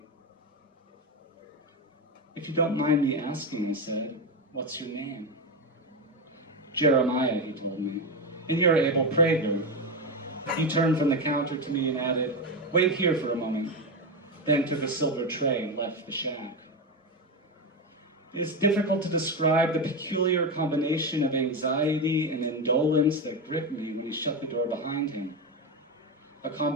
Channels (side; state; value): both; normal; correlation 0.14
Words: If you don't mind me asking, I said, what's your name? Jeremiah, he told me, and you're Abel Prager. He turned from the counter to me and added, wait here for a moment, then took a silver tray and left the shack. It is difficult to describe the peculiar combination of anxiety and indolence that gripped me when he shut the door behind him. A